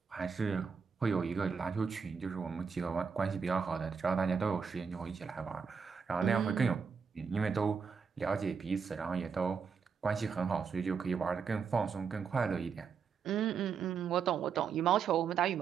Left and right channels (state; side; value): quieter; left; 6.0 dB